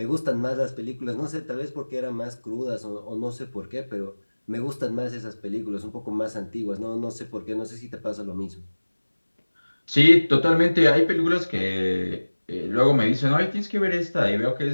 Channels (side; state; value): both; inverted; correlation -1.00